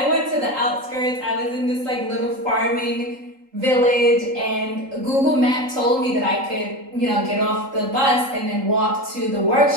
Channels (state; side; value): late; left; 3.8 ms